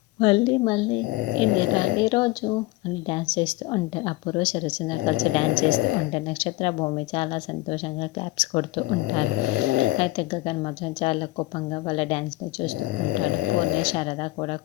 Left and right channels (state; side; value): quieter; right; 20.4 dB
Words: మళ్ళీ మళ్ళీ ఎన్నిరా ఈరోజు అని డ్యాన్స్ చేస్తూ ఉంటారు. అపూర్వ శరత్ చంద్ర కలిసి డ్యాన్స్ చేస్తూ ఉంటారు. నక్షత్ర భూమి చాలా సంతోషంగా క్లాప్స్ కొడుతూ ఉంటారు. అయితే గగన్ మాత్రం చాలా కోపంగా వాళ్ళ డ్యాన్స్ని చూస్తూ ఉంటాడు. పూర్ణి శారద కూడా